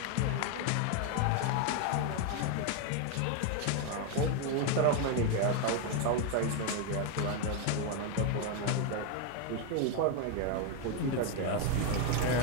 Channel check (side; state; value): both; different; correlation 0.01